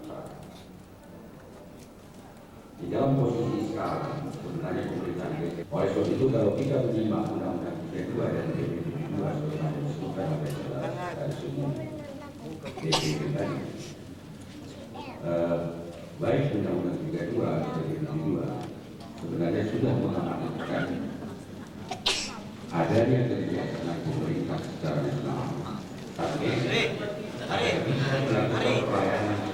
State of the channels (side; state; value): both; identical; correlation 1.00